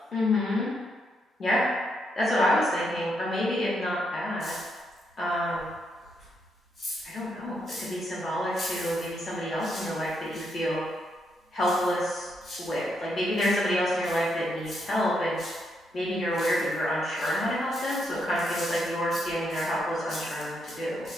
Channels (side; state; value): both; normal; correlation 0.78